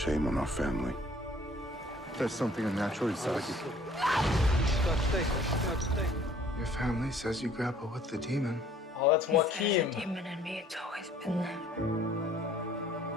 shame on our family. There's something unnatural inside you. Your family says you grapple with the demon. Oh, that's Joaquin. There's a demon in me. It's always been there.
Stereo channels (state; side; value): normal; both; correlation 0.56